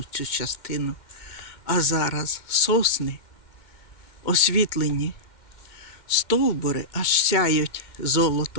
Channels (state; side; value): late; right; 2.2 ms